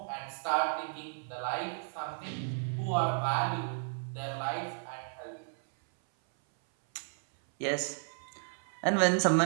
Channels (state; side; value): silent; left; 56 dB below the other